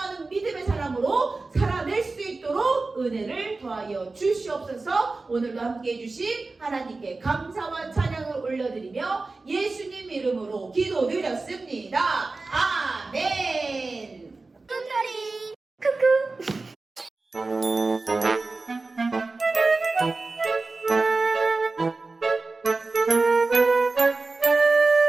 믿음의 사람으로 살아낼 수 있도록 은혜를 더하여 주시옵소서. 오늘도 함께해 주신 하나님께 감사와 찬양을 올려드리며 예수님 이름으로 기도드렸습니다. 아멘. 뚱터리 쿠쿠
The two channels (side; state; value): left; quieter; 3.6 dB